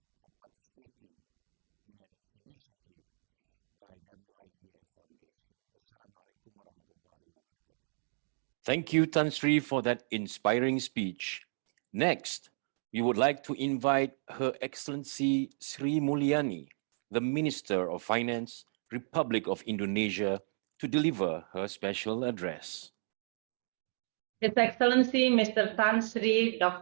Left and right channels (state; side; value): silent; left; digital silence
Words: for participating in an initiative by WIEF Foundation. Wassalamualaikum warahmatullahi wabarakatuh. Thank you, Tan Sri, for that inspiring speech. Next, we would like to invite Her Excellency Sri Mulyani, the Minister of Finance, Republic of Indonesia, to deliver her special address. His Excellency Mr. Tan Sri